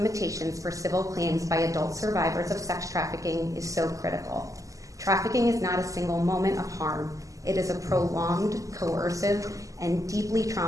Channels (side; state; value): left; late; 0.16 ms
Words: for civil claims by adult survivors of sex trafficking is so critical. Trafficking is not a single moment of harm. It is a prolonged, coercive, and deeply